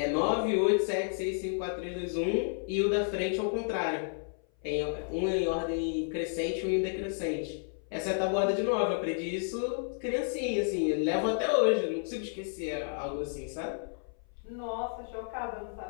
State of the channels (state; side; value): silent; right; 56 dB below the other